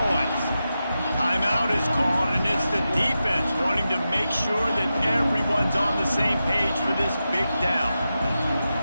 Timeout is called, and it's the defense wanting to make sure that everyone's on the same page for this big down.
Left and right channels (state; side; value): inverted; both; correlation -0.90